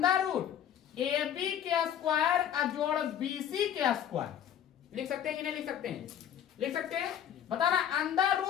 रूट AB के स्क्वायर जोड़ BC के स्क्वायर, लिख सकते हैं कि नहीं लिख सकते हैं? लिख सकते हैं। बताना अंडर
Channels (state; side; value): quieter; right; 9.7 dB